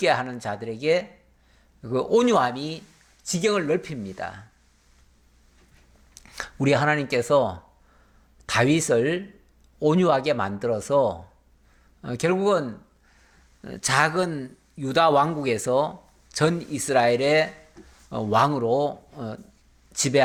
하는 자들에게 그 온유함이 지경을 넓힙니다. 우리 하나님께서 다윗을 온유하게 만들어서 결국은 작은 유다 왕국에서 전 이스라엘의 왕으로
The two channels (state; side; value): identical; both; correlation 1.00